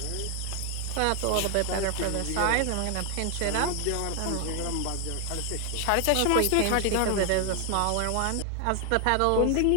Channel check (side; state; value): both; different; correlation 0.00